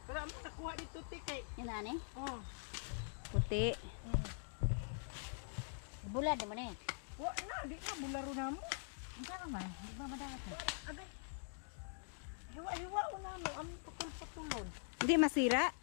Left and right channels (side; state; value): right; silent; digital silence